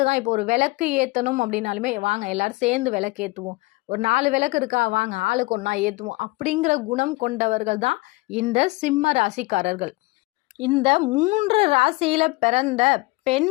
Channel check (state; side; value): quieter; right; 23.1 dB